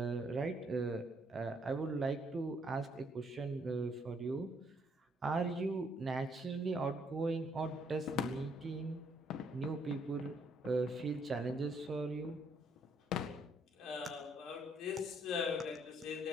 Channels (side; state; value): both; normal; correlation 0.69